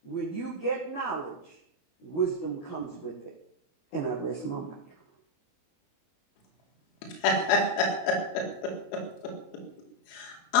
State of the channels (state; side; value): late; right; 22 ms